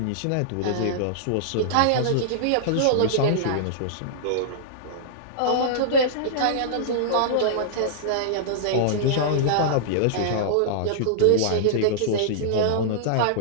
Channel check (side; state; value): both; different; correlation -0.02